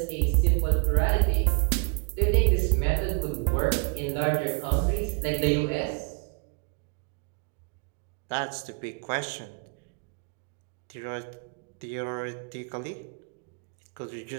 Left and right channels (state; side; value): quieter; left; 38.9 dB